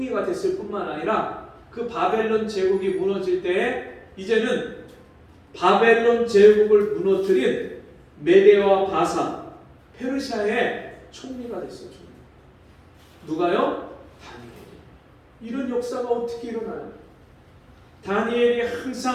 됐을 뿐만 아니라 그 바벨론 제국이 무너질 때에 이제는 바벨론 제국을 무너뜨린 메대와 바사 페르시아의 총리가 됐어요. 누가요? 다니엘이. 이런 역사가 어떻게 일어나요? 다니엘이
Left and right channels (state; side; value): identical; both; correlation 1.00